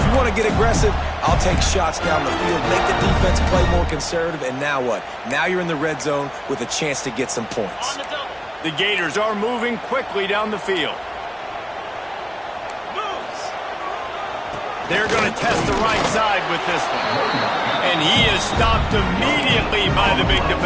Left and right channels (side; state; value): both; identical; correlation 1.00